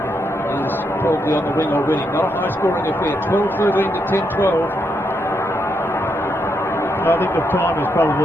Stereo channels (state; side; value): normal; both; correlation 0.80